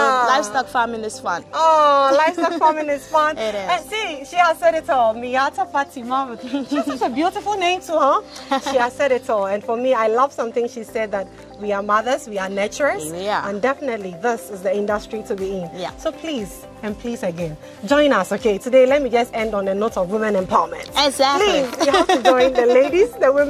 farming is fun. Oh, livestock farming is fun. It is. And see, she has said it all. Miata Fatima. She has such a beautiful name too, huh? She has said it all. And for me, I love something she said, that we are mothers, we are nurturers. And definitely this is the industry to be in. So please, and please again, join us, okay? Today, let me just end on a note of women empowerment. Exactly. Please, you have to join the ladies, the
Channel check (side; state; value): both; identical; correlation 1.00